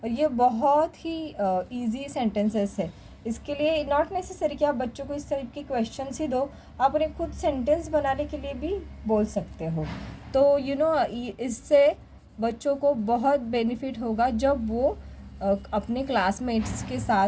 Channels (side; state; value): both; identical; correlation 1.00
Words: और ये बहुत ही इजी सेंटेंसेस है. इसके लिए नॉट नेसेसरी कि आप बच्चों को इस टाइप के क्वेश्चंस ही दो, आप उन्हें खुद सेंटेंस बनाने के लिए भी बोल सकते हो. तो इससे बच्चों को बहुत बेनिफिट होगा जब वो अपने क्लासमेट्स के साथ